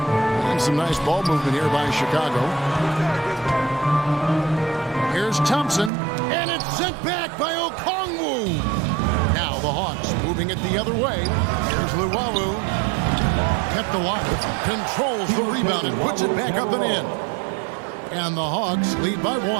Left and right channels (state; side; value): drops out; left; at 5.9 s